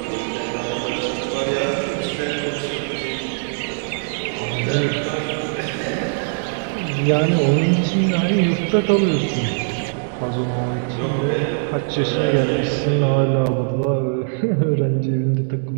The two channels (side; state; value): left; silent; digital silence